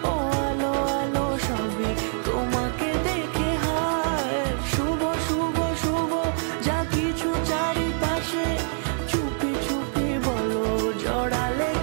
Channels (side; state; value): left; silent; 57 dB below the other